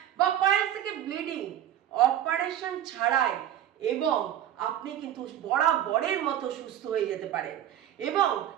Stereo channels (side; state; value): left; quieter; 11.4 dB